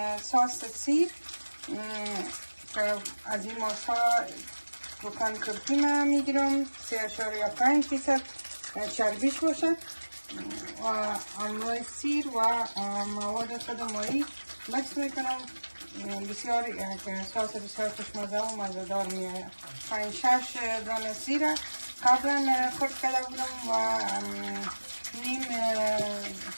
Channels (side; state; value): both; inverted; correlation -1.00